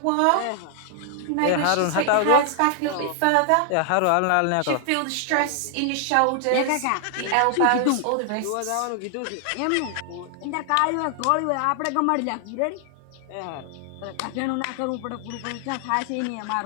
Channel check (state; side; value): different; both; correlation 0.00